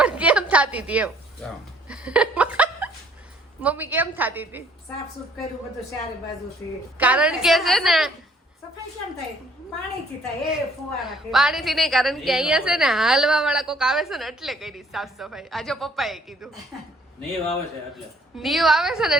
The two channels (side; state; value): both; normal; correlation 0.60